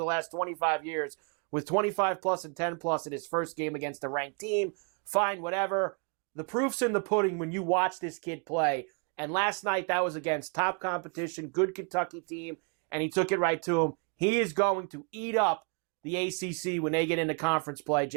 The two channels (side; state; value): left; quieter; 36.8 dB